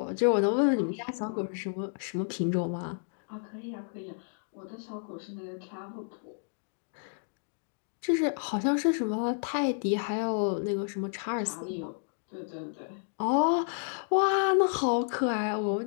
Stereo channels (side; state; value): right; silent; digital silence